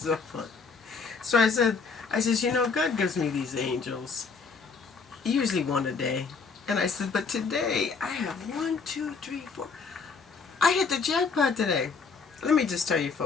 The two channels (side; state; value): right; quieter; 5.0 dB